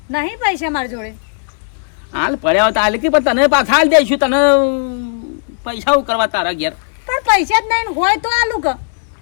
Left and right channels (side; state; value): right; silent; 64 dB below the other